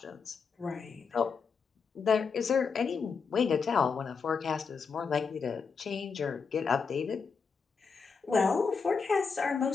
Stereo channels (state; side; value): quieter; right; 5.5 dB